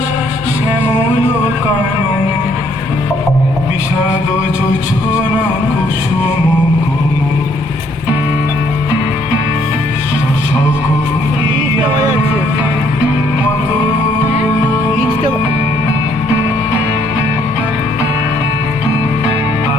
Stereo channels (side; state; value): both; normal; correlation 0.67